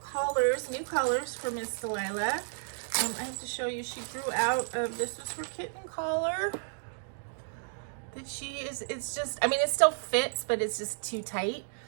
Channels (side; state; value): left; silent; digital silence